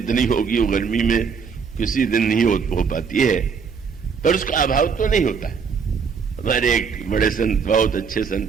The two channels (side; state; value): left; quieter; 5.9 dB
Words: होगी वो गर्मी में किसी दिन नहीं हो पाती है, पर उसका अभाव तो नहीं होता। हमारे एक बड़े संत, बहुत अच्छे